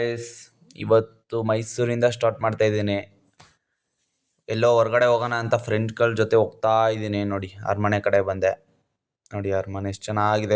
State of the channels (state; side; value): identical; both; correlation 1.00